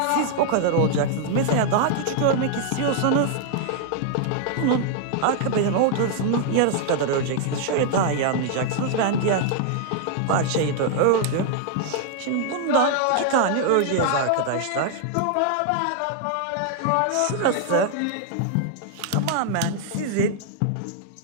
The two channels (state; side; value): different; both; correlation 0.00